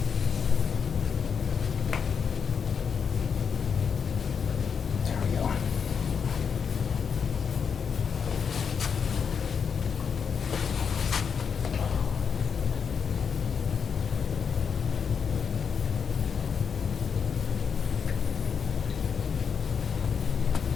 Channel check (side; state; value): right; quieter; 6.6 dB